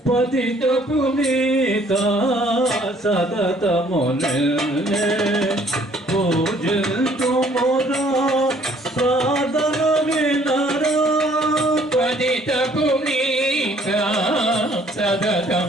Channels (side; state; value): both; normal; correlation 0.60